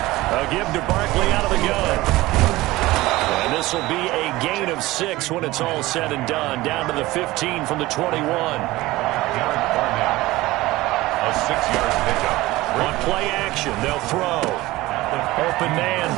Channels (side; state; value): left; quieter; 18.8 dB